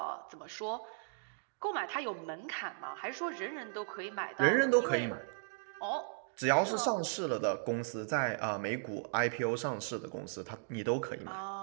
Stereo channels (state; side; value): silent; left; digital silence